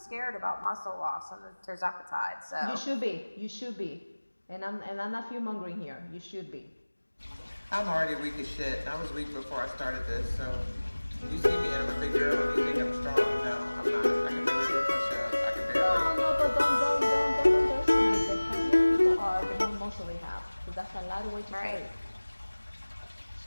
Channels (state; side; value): inverted; both; correlation -1.00